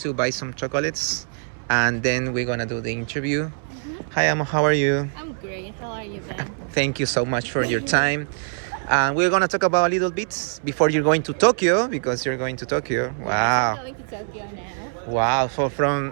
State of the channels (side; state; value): left; silent; 63 dB below the other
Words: buy some chocolates, and then we're gonna do the interview. Hi, Amo. How are you? I'm great. How are you, Ben? Thank you so much for your time. We're gonna talk about a little bit before you're going to Tokyo, because you're going to Tokyo. Wow. I'm going to Tokyo now. Wow. So